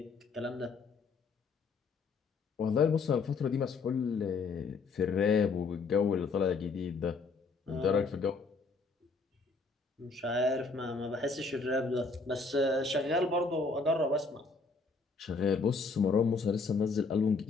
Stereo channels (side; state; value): right; quieter; 4.3 dB